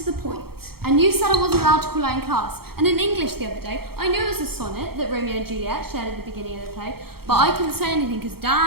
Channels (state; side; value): late; left; 0.95 ms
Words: the point. And you said I wasn't allowed to call out in class. And in English the other day, I knew it was a sonnet that Romeo and Juliet shared at the beginning of the play, but I couldn't say anything because